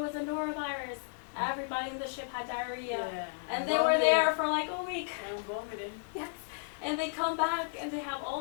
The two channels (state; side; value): silent; right; 55 dB below the other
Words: a norovirus. Everybody in the ship had diarrhea. Yeah. And they were there for like a week. And vomiting. Yes. And they come back and they have